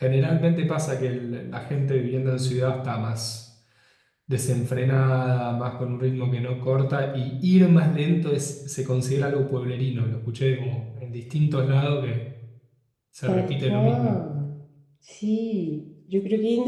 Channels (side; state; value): both; identical; correlation 1.00